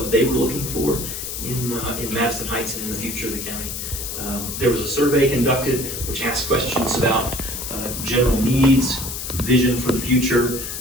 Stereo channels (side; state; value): left; noise; hiss, 6 dB below the sound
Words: they were looking for in Madison Heights and in the future of the county. There was a survey conducted which asked questions about general needs, vision for the future,